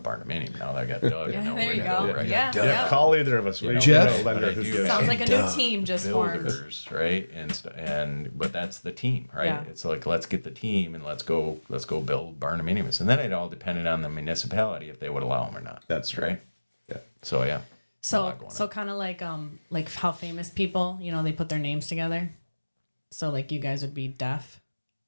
Now that I got Doug, I know there where you to go. go, right? Yeah. Call either of us. We Jeff? know a lender But I who do gives. Sounds like a new team just formed. Builders, right? But that's the team, right? Yeah. It's like, let's get the team and let's go build barndominiums, and then it all depended on the municipality if they would allow them or not. That's right. Yeah. So yeah. So kind of like how famous people, they put their names together. So like you guys would be deaf.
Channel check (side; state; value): both; inverted; correlation -1.00